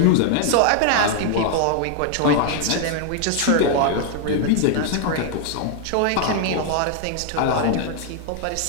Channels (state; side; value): different; both; correlation 0.00